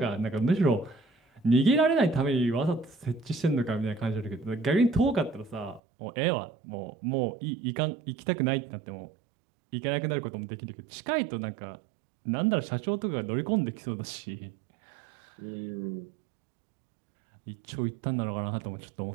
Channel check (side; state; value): left; drops out; at 5.8 s